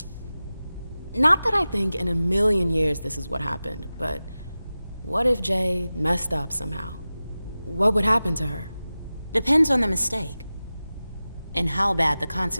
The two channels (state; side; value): inverted; both; correlation -0.96